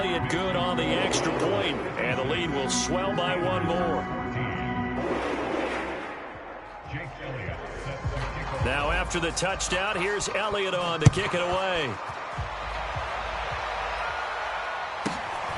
good on the extra point, and the lead will swell by 1 more. Now after the touchdown, here's Elliott on to kick it away.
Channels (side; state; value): both; identical; correlation 1.00